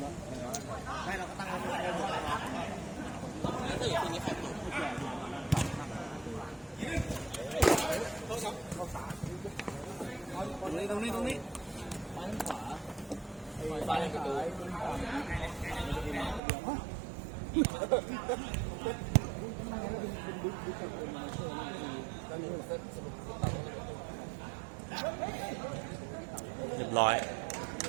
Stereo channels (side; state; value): left; drops out; at 16.4 s